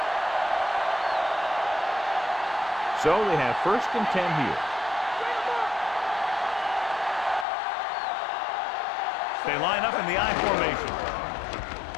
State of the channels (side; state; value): right; drops out; at 7.5 s